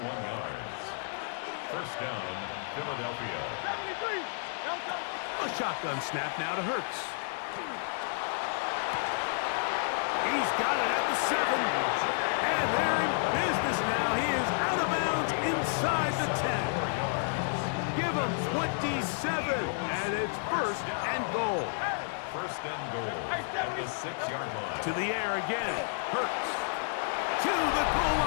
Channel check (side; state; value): right; silent; digital silence